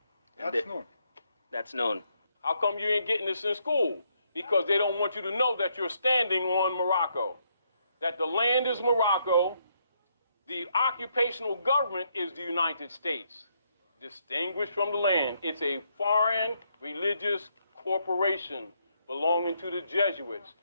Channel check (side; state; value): both; inverted; correlation -0.75